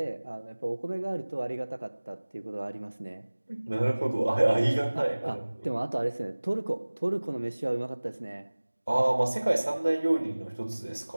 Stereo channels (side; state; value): both; inverted; correlation -1.00